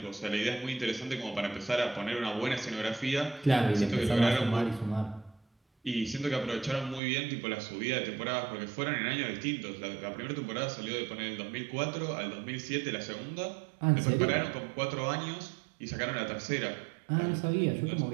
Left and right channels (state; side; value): drops out; left; at 7.0 s